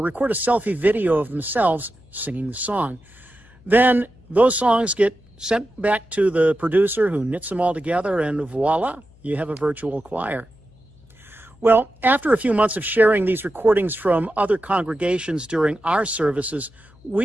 a selfie video of themselves singing the song. Then those songs get sent back to the producer who knits them all together, and voila, you have a virtual choir. Well, after a few months of sharing these recordings from other congregations during our services, we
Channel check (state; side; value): noise; left; hum, 27 dB below the sound